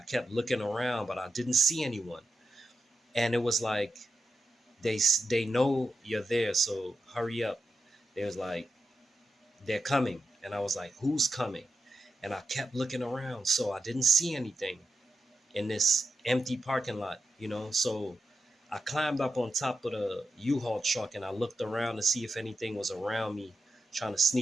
kept looking around, but I didn't see anyone. And it was like they know you're there, so hurry up. They was like, "They're coming," and I was like, "Who's coming?" And I kept looking around, so I didn't see anything in this empty parking lot, So I climbed up on top of the U-Haul truck and I looked around to see if anything was around me trying to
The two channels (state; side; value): normal; both; correlation 0.88